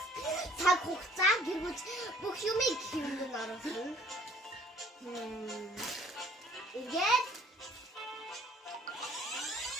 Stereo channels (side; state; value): both; normal; correlation 0.57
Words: цаг хугацаа гэргүүж бүх юмыг хэмнэн оруулсан. Ингээд